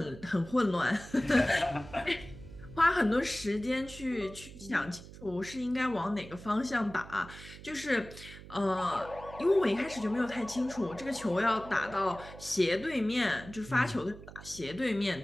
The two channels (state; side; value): noise; right; hum, 16 dB below the sound